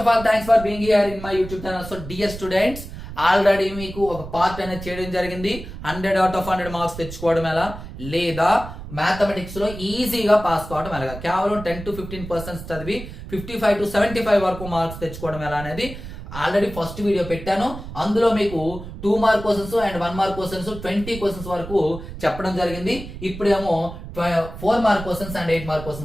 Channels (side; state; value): right; noise; rumble, 11 dB below the sound